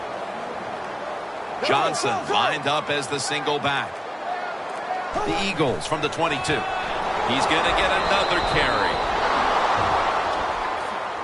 Johnson lined up as the single back. The Eagles from the 22. He's going to get another carry.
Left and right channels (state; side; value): identical; both; correlation 1.00